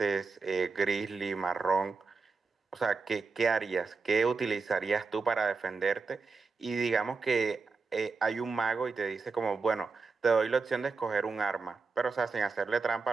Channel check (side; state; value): left; quieter; 4.5 dB